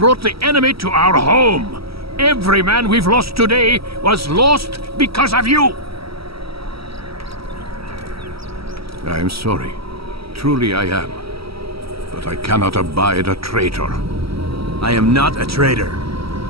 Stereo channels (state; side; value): late; left; 0.76 ms